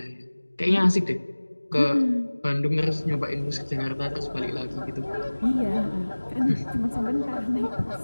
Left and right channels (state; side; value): inverted; both; correlation -1.00